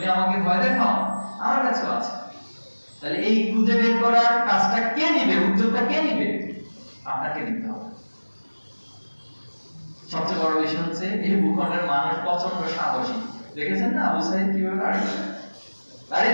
আমাকে ভয় দেখাও, আমার কাছেও আছে। তাহলে এই খুঁজে বের করার কাজটা কে নিবে, উদ্যোগটা কে নিবে? আপনাকে নিতে হবে। সবচেয়ে বড় বিষয় হচ্ছে এই ভূখণ্ডের মানুষ প্রচন্ড সাহসী। দেখেছেন না আবু সাইদ কিভাবে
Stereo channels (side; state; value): both; inverted; correlation -1.00